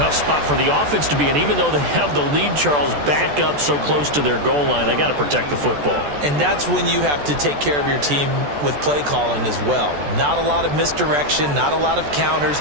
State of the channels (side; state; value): left; late; 14 ms